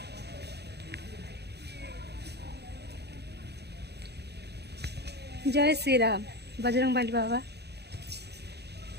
जय श्री राम, बजरंगबली बाबा।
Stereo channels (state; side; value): late; left; 0.48 ms